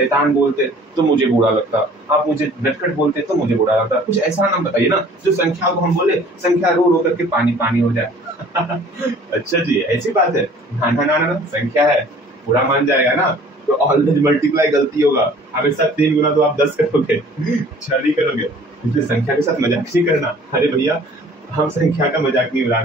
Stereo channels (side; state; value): both; normal; correlation 0.51